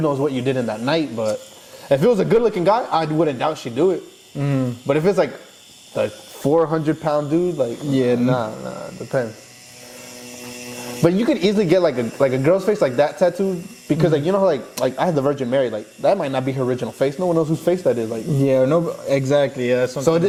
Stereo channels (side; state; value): both; identical; correlation 1.00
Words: knows what you did in that night? But if it was a good-looking guy, I wouldn't doubt she'd do it. But if it's like the 400-pound dude, like nah, depends. But you could easily get like a girl's face like that tattooed because like you know how, like I had the Virgin Mary, like that might not be her original face. No one knows whose face that is. Like no, exactly. Yeah. So